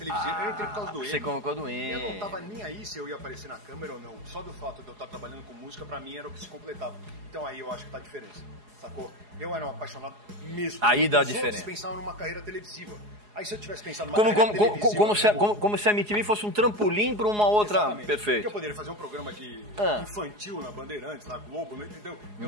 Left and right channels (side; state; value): left; late; 4.8 ms